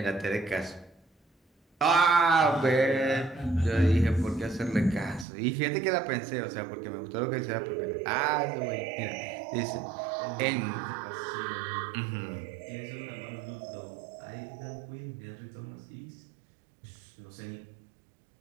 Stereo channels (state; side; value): drops out; left; at 5.2 s